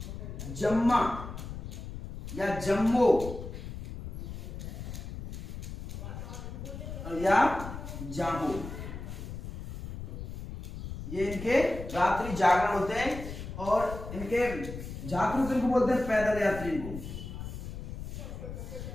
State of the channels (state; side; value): noise; left; rumble, 9 dB below the sound